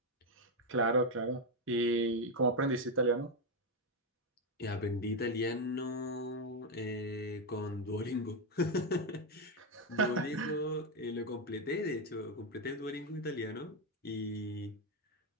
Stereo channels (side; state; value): both; normal; correlation 0.06